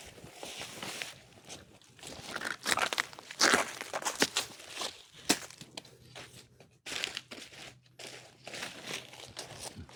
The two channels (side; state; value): both; identical; correlation 1.00